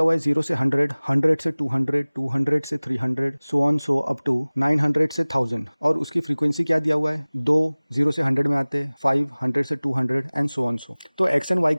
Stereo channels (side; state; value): both; inverted; correlation -1.00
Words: हुआ है 0 से 100, 100 से 200, 200 से 300, so on so up to 900 से 1000। और उसकी फ्रीक्वेंसी क्या दिया हुआ है, 2 0 से 100 में आते हैं, 5 100 से 200 एंड सो ऑन सो। तो एक्स एंड वाई